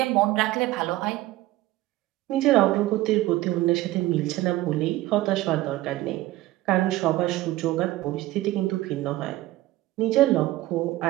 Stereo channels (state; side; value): quieter; left; 16.7 dB